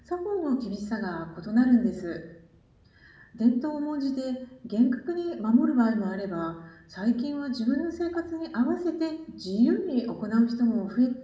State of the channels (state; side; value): identical; both; correlation 1.00